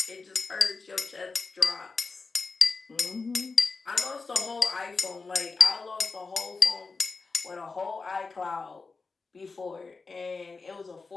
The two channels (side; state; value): right; quieter; 4.3 dB